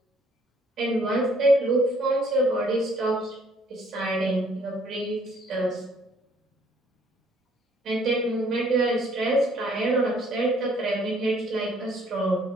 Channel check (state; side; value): normal; both; correlation 0.63